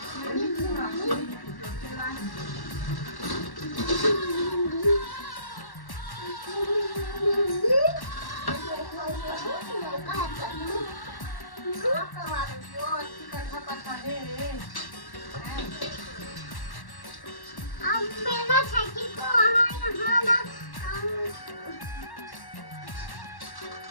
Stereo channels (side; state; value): right; late; 1.1 ms